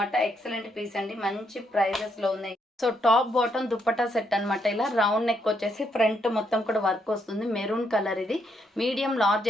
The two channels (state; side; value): normal; both; correlation 0.76